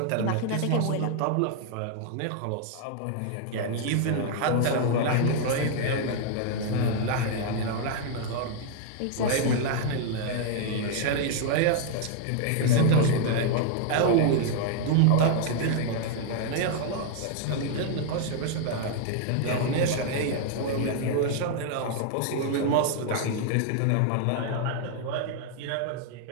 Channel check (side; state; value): both; different; correlation 0.00